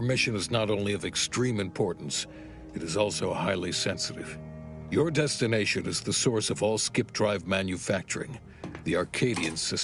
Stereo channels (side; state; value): both; identical; correlation 1.00